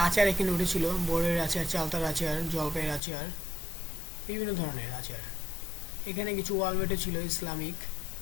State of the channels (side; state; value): right; drops out; at 3.0 s